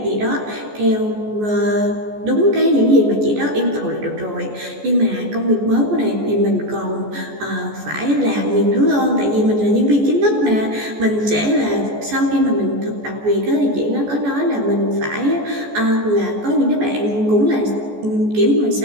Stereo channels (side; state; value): left; late; 14 ms